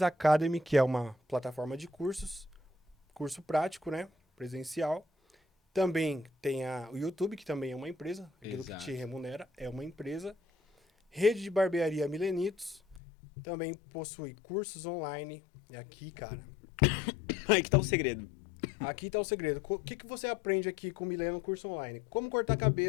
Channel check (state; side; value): drops out; right; at 13.0 s